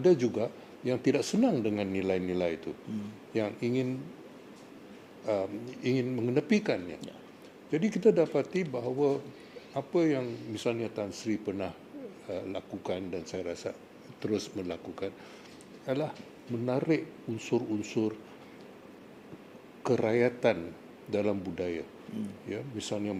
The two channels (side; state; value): both; identical; correlation 1.00